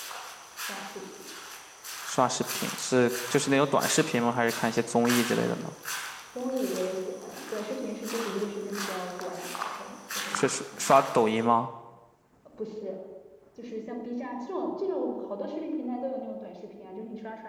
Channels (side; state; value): both; identical; correlation 1.00